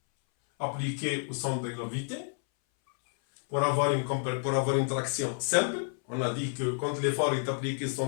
appliquée au centre de gravité, pour avoir une traction simple, on a dit que quand l'effort est appliqué au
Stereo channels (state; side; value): silent; right; 58 dB below the other